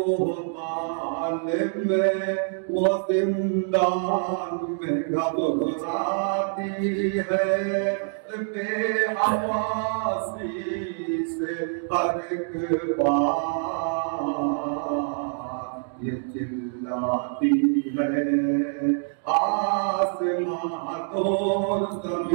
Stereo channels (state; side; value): silent; left; digital silence